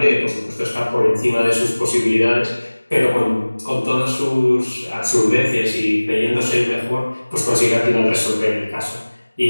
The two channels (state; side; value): inverted; both; correlation -1.00